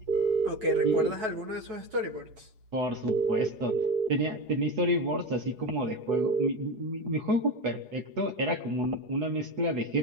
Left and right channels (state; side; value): late; left; 4.7 ms